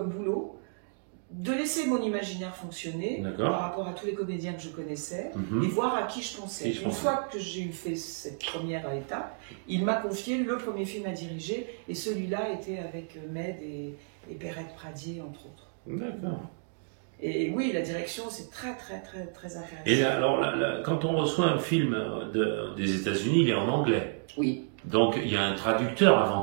boulot de laisser mon imaginaire fonctionner par rapport à tous les comédiens que je connaissais et voir à qui je pensais. Une fois que j'ai fait cette première étape, il m'a confié le premier film à diriger et celui-là était avec Med et Perrette Pradier, entre autres. D'accord. Et oui, la direction, c'est très, très, très, très intéressant. Et là, alors, quand on reçoit un film des États-Unis, il est en anglais. Oui. Donc, il y a un traducteur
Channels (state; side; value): silent; left; digital silence